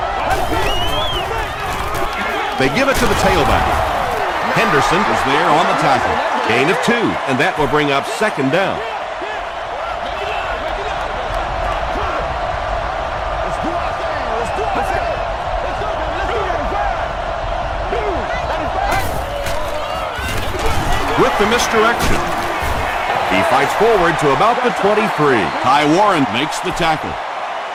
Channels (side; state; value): both; identical; correlation 1.00